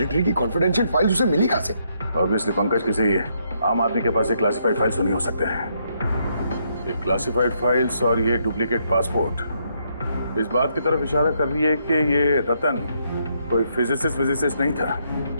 की कॉन्फिडेंशियल फाइल उसे मिली कहां से? ऑब्वियसली पंकज, किसी आम आदमी के पास ये क्लासिफाइड फाइल्स नहीं हो सकते हैं। ये क्लासिफाइड फाइल्स और ये डुप्लीकेट पासपोर्ट इस बात की तरफ इशारा कर रही है कि ये रतन कोई फिजिसिस्ट नहीं था।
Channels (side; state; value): both; inverted; correlation -0.75